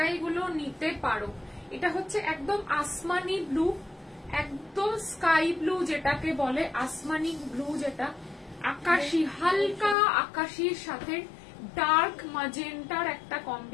গুলো নিতে পারো। এটা হচ্ছে একদম আসমানি ব্লু, একদম স্কাই ব্লু যেটাকে বলে, আসমানি ব্লু যেটা আকাশি, হালকা আকাশির সাথে ডার্ক ম্যাজেন্টার একটা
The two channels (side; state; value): right; drops out; at 10.0 s